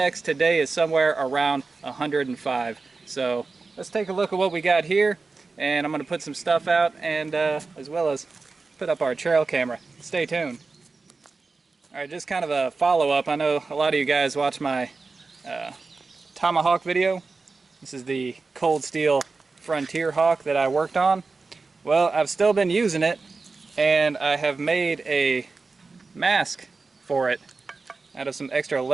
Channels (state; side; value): quieter; left; 4.1 dB